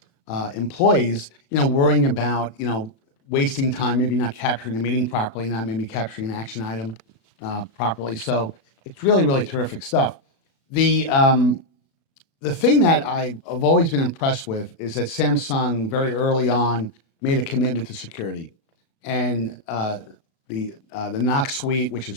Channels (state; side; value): late; right; 36 ms